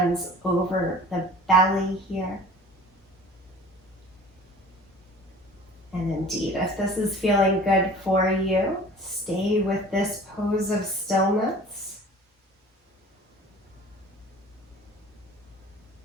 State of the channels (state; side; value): normal; both; correlation 0.45